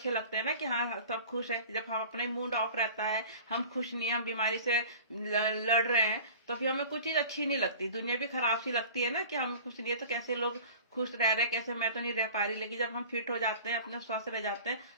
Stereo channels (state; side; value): inverted; both; correlation -0.41